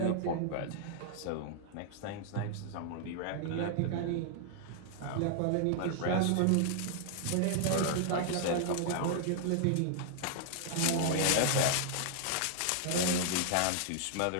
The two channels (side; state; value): both; different; correlation 0.00